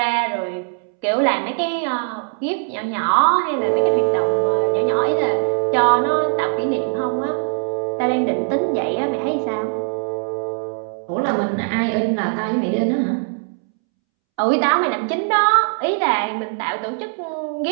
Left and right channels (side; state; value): left; silent; 65 dB below the other